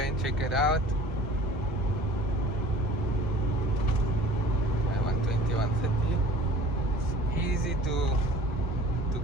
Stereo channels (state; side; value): normal; both; correlation 0.46